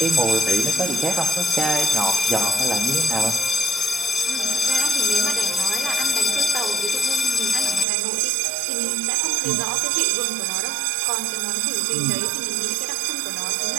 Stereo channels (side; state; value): left; drops out; at 7.9 s